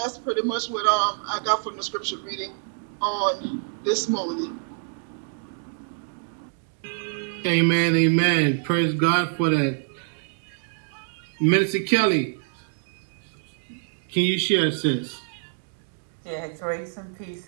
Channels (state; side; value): silent; left; digital silence